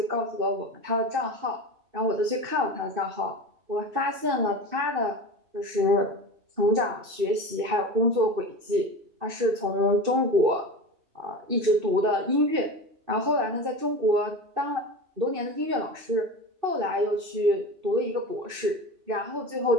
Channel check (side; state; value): left; late; 2.6 ms